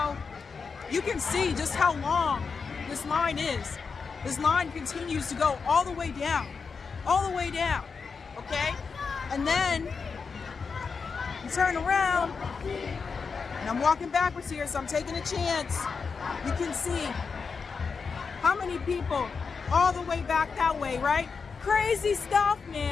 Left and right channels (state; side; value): quieter; right; 5.3 dB